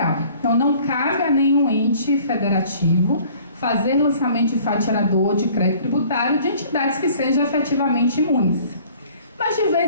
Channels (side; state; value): both; inverted; correlation -0.53